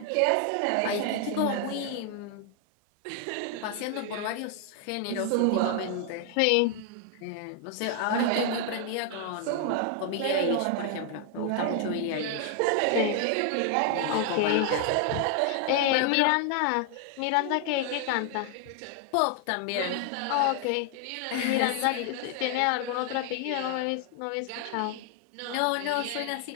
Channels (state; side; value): different; both; correlation 0.00